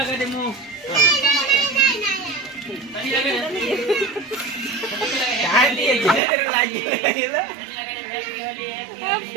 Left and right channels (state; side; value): drops out; left; at 6.2 s